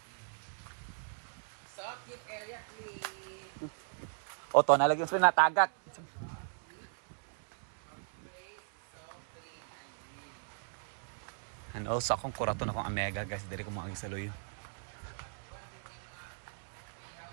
So keep area clean. O to, nalagyan sa natagat. And also akong kuraton akong Omega guys, diri ko mga gisaloyo.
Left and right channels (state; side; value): silent; left; digital silence